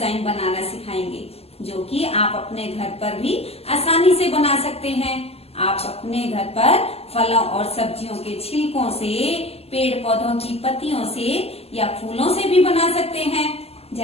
बनाना सिखाएंगे, जो कि आप अपने घर पर भी आसानी से बना सकते हैं। आप अपने घर पर फलों और सब्जियों के छिलकों से, पेड़ पौधों की पत्तियों से या फूलों से भी बना सकते हैं।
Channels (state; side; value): late; right; 0.29 ms